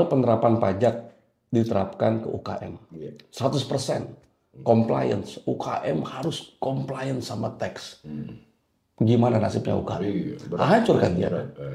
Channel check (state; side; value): identical; both; correlation 1.00